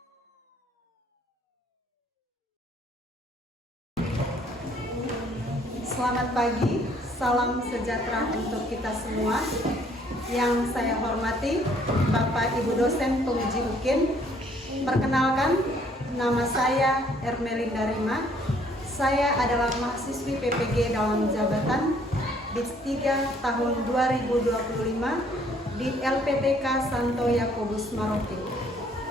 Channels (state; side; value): normal; both; correlation 0.62